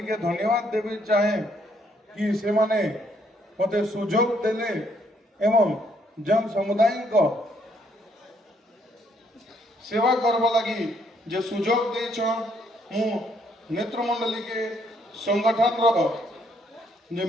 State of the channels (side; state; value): both; normal; correlation 0.69